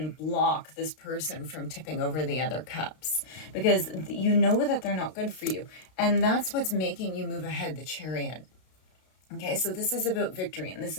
block this person from tipping over the other cups, because you know that they're not good for you. And that's what's making you move ahead, the Chariot. Okay, so this is about victory, and this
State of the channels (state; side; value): late; right; 32 ms